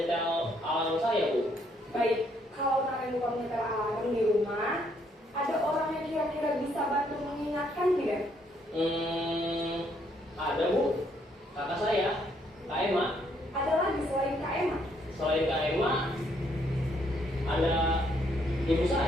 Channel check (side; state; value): both; normal; correlation 0.70